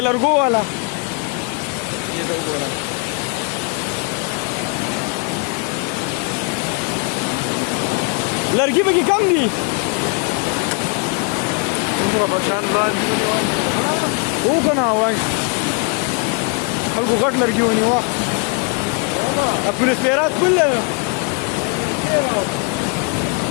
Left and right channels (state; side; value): quieter; right; 31.3 dB